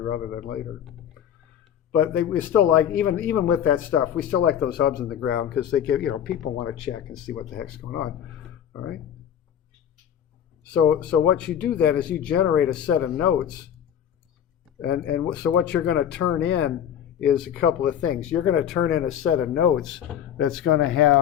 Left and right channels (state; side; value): quieter; right; 9.6 dB